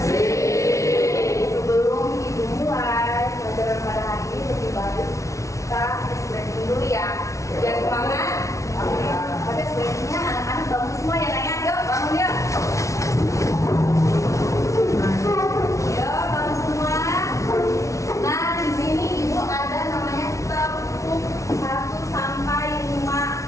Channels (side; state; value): right; late; 0.15 ms